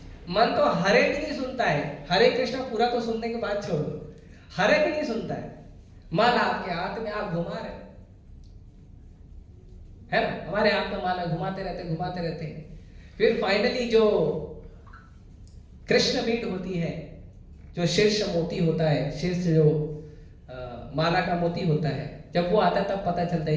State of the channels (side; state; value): both; identical; correlation 1.00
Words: मन तो हरे भी नहीं सुनता है, हरे कृष्ण पूरा तो सुनने के बाद छोड़ दो, हरे भी नहीं सुनता है। माला आपके हाथ में आप घुमा रहे है ना, हमारे हाथ में माला घुमाते रहते हैं। फिर फाइनली जो कृष्ण बीट होती है, जो शीर्ष मोती होता है, शीर्ष जो माला का मोती होता है, जब वो आता है तब पता चलता है